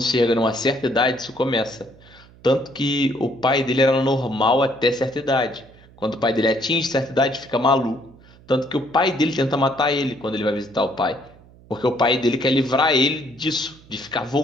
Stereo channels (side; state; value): right; noise; hum, 25 dB below the sound